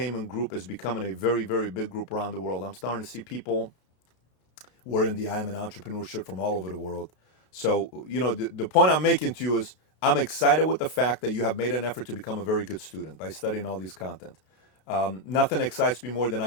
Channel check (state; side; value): late; right; 32 ms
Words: group is becoming a very, very big group around the world. I'm starting to see people wearing the I Am an Entrepreneur shirt from all over the world. So, the point I'm making to you is I'm excited with the fact that you have made an effort to become a very good student by studying all these content. Nothing excites me more than